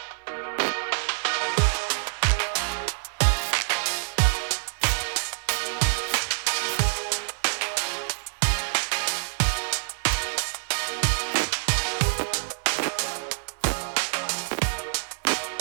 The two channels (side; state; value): left; silent; 61 dB below the other